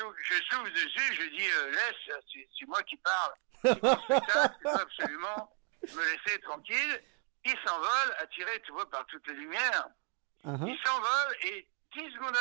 souffle dessus, je dis, laisse, c'est moi qui parle. C'est mon spectacle, tu dois absolument me laisser tranquille. Il s'envole, attiré, tu vois, par toutes les lumières. Uh-huh. Il s'envole et 10 secondes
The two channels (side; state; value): left; quieter; 38.8 dB